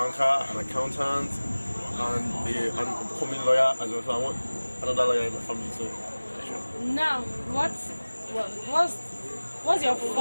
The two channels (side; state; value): both; inverted; correlation -1.00